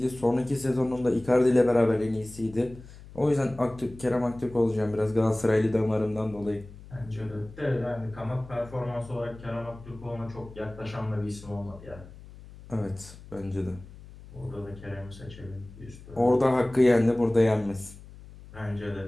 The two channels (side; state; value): left; noise; hum, 18 dB below the sound